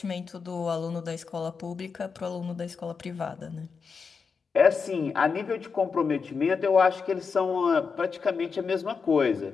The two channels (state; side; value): quieter; right; 5.4 dB